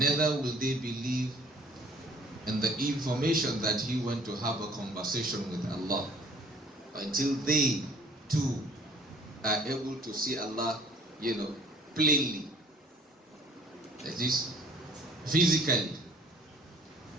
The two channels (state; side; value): normal; both; correlation 0.54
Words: will they believe in the information that he went to have a conversation with Allah, until they too are able to see Allah, plainly. That is, physically.